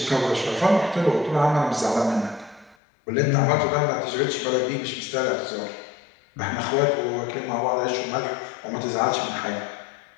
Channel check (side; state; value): right; drops out; at 2.8 s